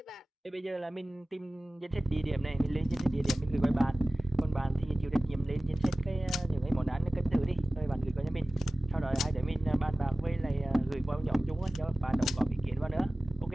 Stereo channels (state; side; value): normal; both; correlation 0.97